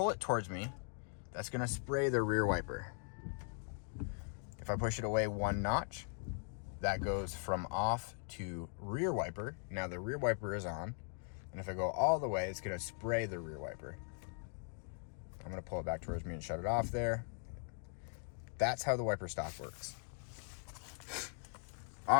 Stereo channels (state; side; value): silent; right; 51 dB below the other